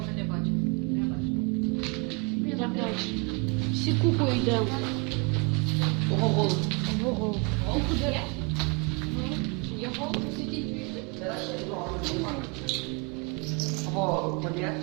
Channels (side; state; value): left; quieter; 32.0 dB